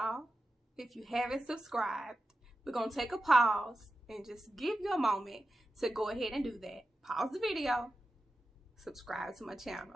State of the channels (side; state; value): both; normal; correlation 0.92